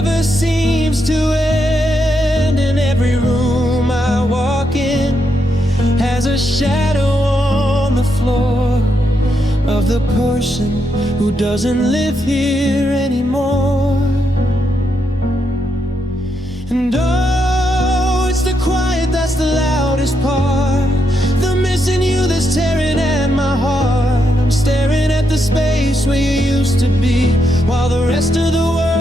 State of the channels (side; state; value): both; normal; correlation 0.81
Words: seems to end. And every room I walk in has a shadow on the floor of the person who doesn't live here anymore. And oh, it's the quiet that's the loudest part, the missing you that's tearing at my heart. I'm staring at the space where you used to be, while the rest of the